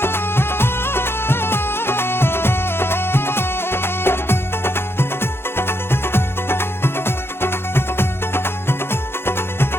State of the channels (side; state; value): right; late; 0.11 ms